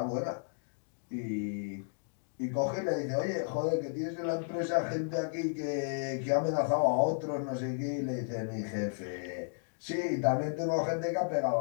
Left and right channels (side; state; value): right; silent; digital silence